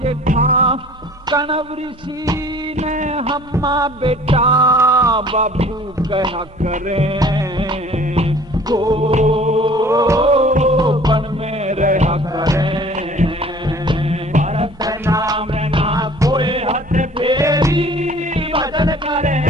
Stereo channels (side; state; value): both; normal; correlation 0.50